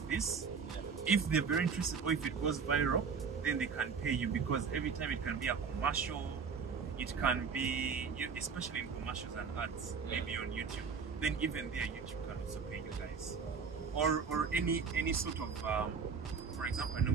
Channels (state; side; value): quieter; left; 5.7 dB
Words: this. If they're very interested, or if it goes viral, then they can pay you, because every time it can be a commercial, it can be, especially in commercials and ads, maybe on YouTube. Then even there, YouTube can also pay you guys. Or any sort of, for example, I